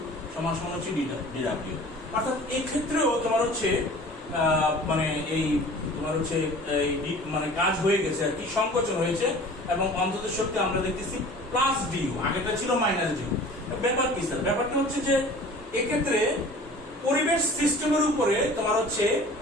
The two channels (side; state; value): both; normal; correlation 0.44